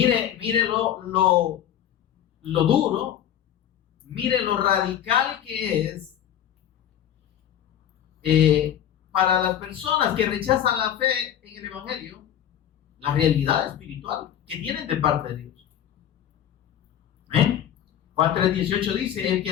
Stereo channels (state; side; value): quieter; right; 10.3 dB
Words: lo duro mire lo radical que es para las personas que rechazan la fe en el Evangelio, la realidad espiritual que tienen de parte de Dios. ¿Eh? Juan 3:18 dice: el que